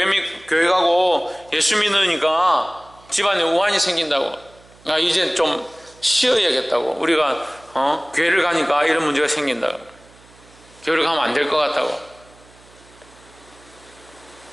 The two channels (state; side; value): noise; right; hum, 27 dB below the sound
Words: 가고 예수 믿으니까 집안에 우환이 생긴다고, 이제 좀 쉬어야겠다고, 우리가 교회를 가니까 이런 문제가 생긴다고, 교회를 가면 안 될 것 같다고.